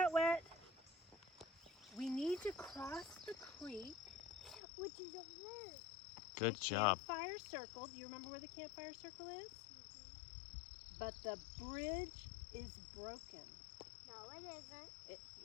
wet. We need to cross the creek. Which is over there. Good The job. Campfire circle. Do you remember where the campfire circle is? But the bridge is broken. No, it isn't.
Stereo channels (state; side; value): drops out; right; at 4.6 s